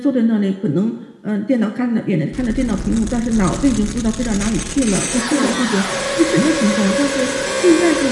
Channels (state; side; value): identical; both; correlation 1.00